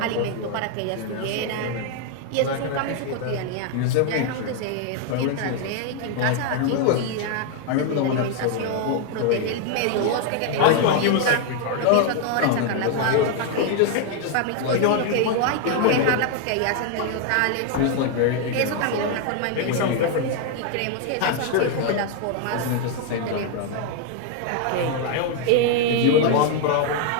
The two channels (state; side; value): different; both; correlation 0.01